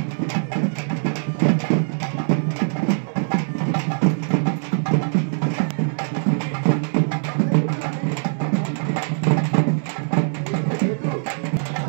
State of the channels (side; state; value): left; silent; 64 dB below the other